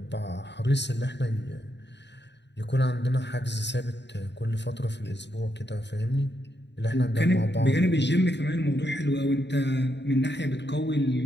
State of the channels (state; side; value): late; right; 0.51 ms